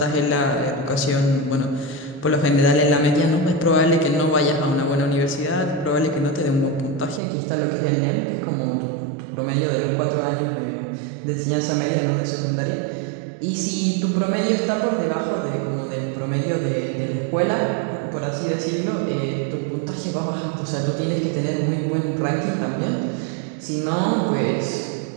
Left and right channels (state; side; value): drops out; left; at 7.2 s